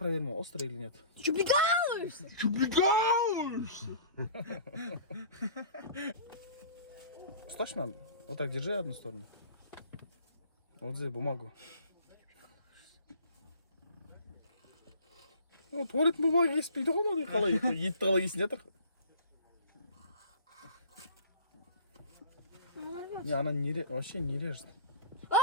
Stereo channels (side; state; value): both; inverted; correlation -0.44